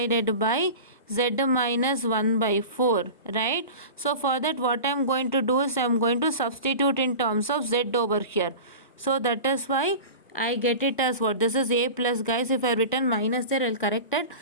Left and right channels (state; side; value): inverted; both; correlation -0.33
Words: by z minus 1 by 4, right? So for that, what I am going to do is, I am going to substitute in terms of z over here. So that is why I get it as what? This is a plus, guys. If I written minus there, I will correct it.